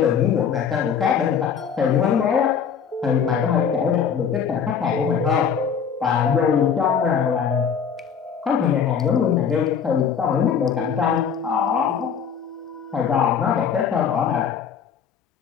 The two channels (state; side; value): quieter; right; 7.2 dB